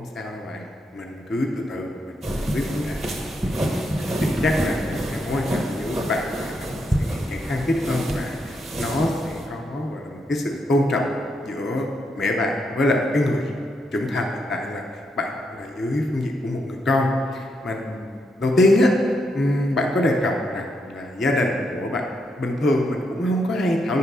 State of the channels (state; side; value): normal; both; correlation 0.80